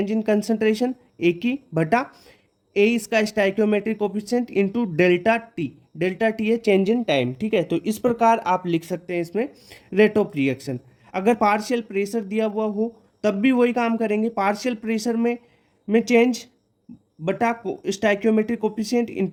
इन कंसंट्रेशन ए की बटा ए इसका stoichiometric coefficient into delta T. Delta T है चेंज इन टाइम। ठीक है, तो इस प्रकार आप लिख सकते हैं इसमें रेट ऑफ रिएक्शन। अगर पार्शियल प्रेशर दिया हुआ हो तब भी वही काम करेंगे, पार्शियल प्रेशर में चेंज बटा stoichiometric coefficient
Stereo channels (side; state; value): both; identical; correlation 1.00